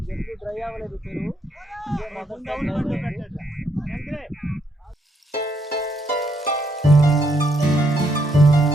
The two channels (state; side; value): normal; both; correlation 0.74